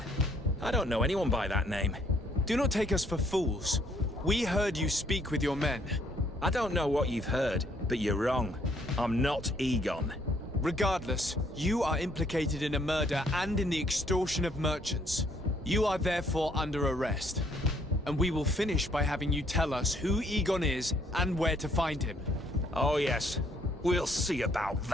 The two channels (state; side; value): normal; both; correlation 0.66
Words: I don't know anyone by that name. Do not take us for fools. We heard you speak with your men. I don't know what you've heard, but you're wrong. I'm not Egon. Regardless, you are implicated in a murder and in the extortion of merchants. You are therefore under arrest. And we will finish by having you tell us who Egon is and where to find him. Oh yes, we'll see about